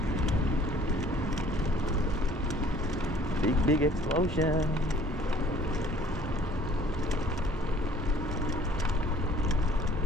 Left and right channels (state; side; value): normal; both; correlation 0.55